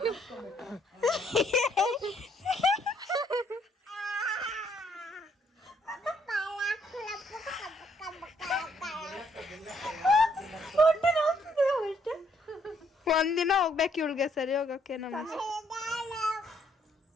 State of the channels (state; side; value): normal; both; correlation 0.69